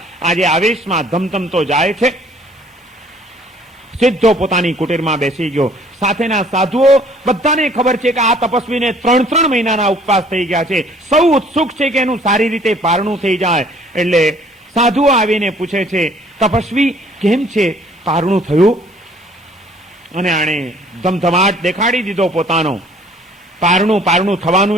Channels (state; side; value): normal; both; correlation 0.57